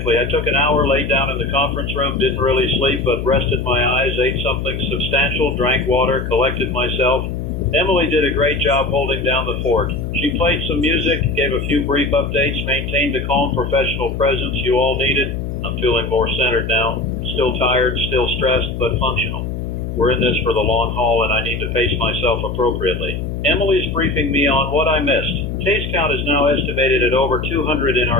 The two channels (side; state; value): left; noise; hum, 5 dB below the sound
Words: I took an hour, laid down in the conference room, didn't really sleep, but rested my eyes, ate something substantial, drank water, collected myself. Emily did a great job holding down the fort. She played some music, gave a few brief updates, maintained the calm professional presence you all needed. I'm feeling more centered now. Still tired, still stressed, but functional. We're in this for the long haul, and I need to pace myself appropriately. Emily's briefing me on what I missed. Case count is now estimated at over 200 in